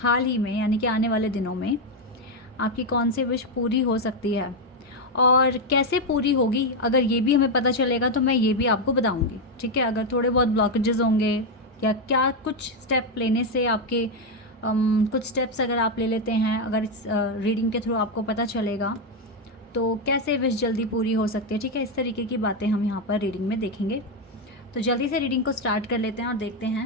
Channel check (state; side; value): normal; both; correlation 0.05